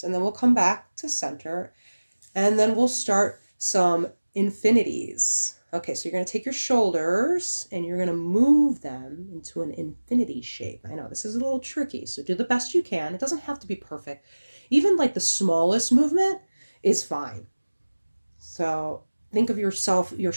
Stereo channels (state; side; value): inverted; both; correlation -1.00